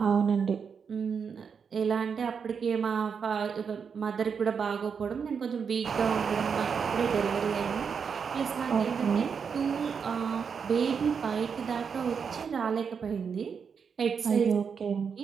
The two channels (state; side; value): quieter; left; 6.3 dB